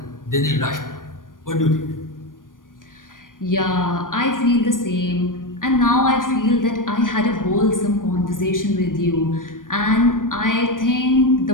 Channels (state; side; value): late; right; 0.90 ms